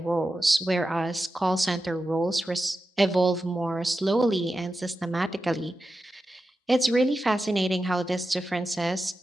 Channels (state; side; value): normal; both; correlation 0.91